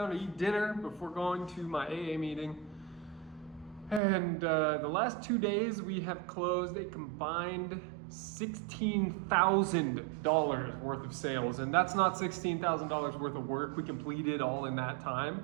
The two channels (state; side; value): drops out; left; at 4.0 s